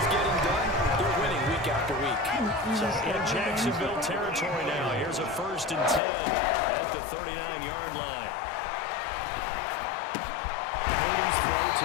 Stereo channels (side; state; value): right; drops out; at 6.0 s